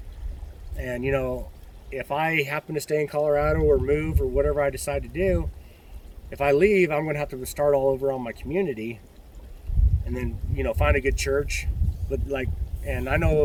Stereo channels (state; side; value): identical; both; correlation 1.00